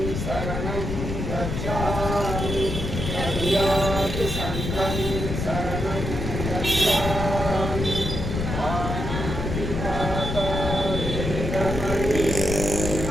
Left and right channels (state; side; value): noise; left; rumble, 3 dB below the sound